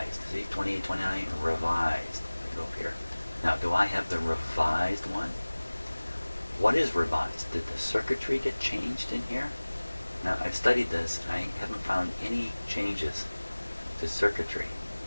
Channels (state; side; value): inverted; both; correlation -1.00